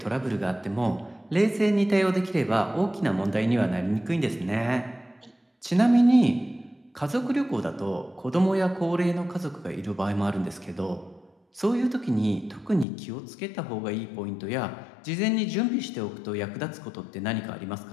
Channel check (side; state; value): right; drops out; at 12.9 s